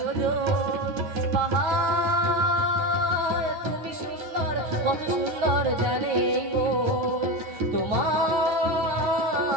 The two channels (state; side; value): late; left; 9.6 ms